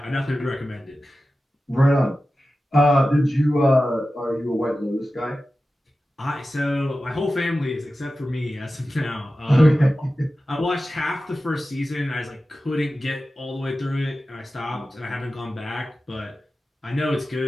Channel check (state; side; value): normal; both; correlation 0.94